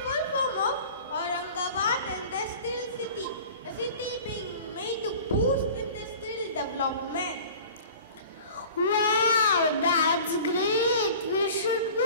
full form of Aurangabad Industrial City, a city being made to boost industrial development. Wow, that's great. We should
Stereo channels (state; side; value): inverted; both; correlation -0.42